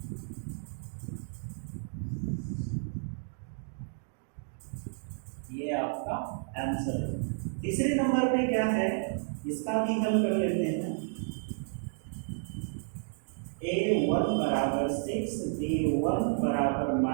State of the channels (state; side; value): silent; left; 57 dB below the other